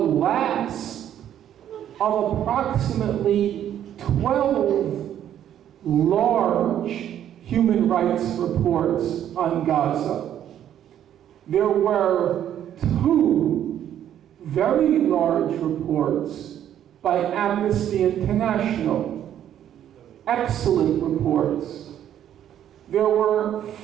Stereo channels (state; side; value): quieter; left; 10.6 dB